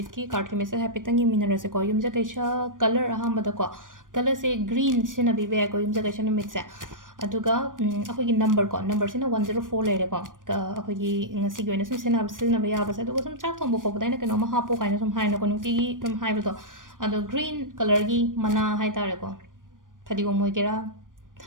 ki card ki message happy tangi mineral se ko yumja kaisha color ahambada ko color se green sina bi be ko yumja kaisha numit se aduga akoi gi number sina 104 lere ko akoi gi ngasi gi sum sina ba ya ba se aduga sum chak thong bo ko dai na keno ma hapo kaina sum haina ko nungti gi tum hai ba to ado green color gi mana hai tare ko phadi go moi kera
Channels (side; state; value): left; late; 0.89 ms